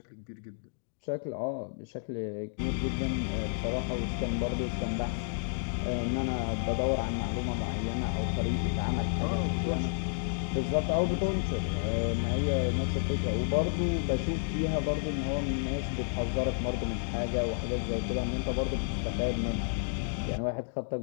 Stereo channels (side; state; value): right; silent; digital silence